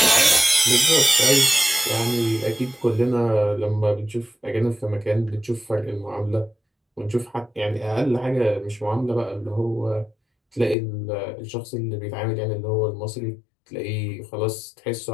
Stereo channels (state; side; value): drops out; right; at 10.8 s